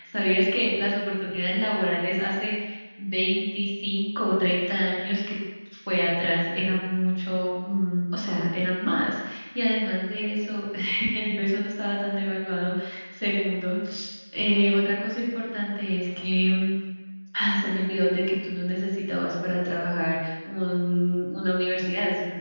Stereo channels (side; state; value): both; inverted; correlation -1.00